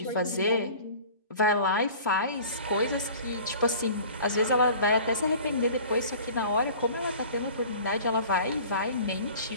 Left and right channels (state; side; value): inverted; both; correlation -0.44